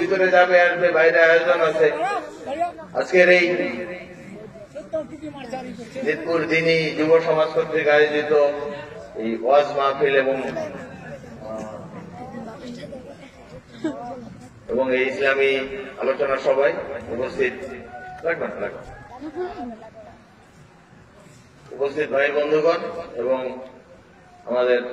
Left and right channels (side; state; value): both; identical; correlation 1.00